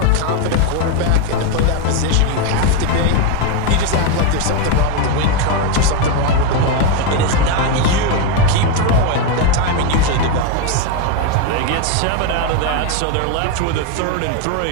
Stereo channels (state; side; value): different; both; correlation 0.02